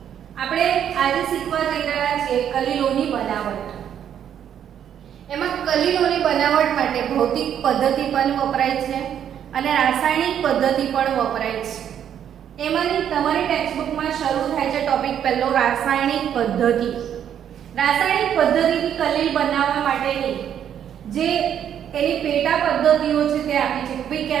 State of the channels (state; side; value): quieter; left; 9.4 dB